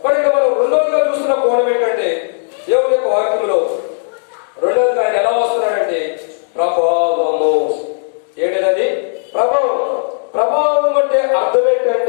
మరి ఇక్కడ మనం రెండోదిగా చూస్తున్న కోణం ఏంటంటే, దేవుని యొక్క వాక్యంలో రెండోదిగా ఆయన ఎలా వస్తున్నాడంటే ప్రభావము. ఏంటది? ప్రభావం. ప్రభావం అంటే అర్థం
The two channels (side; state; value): right; silent; digital silence